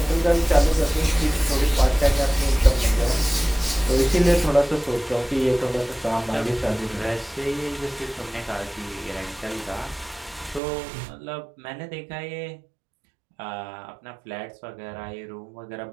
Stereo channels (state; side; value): drops out; left; at 10.6 s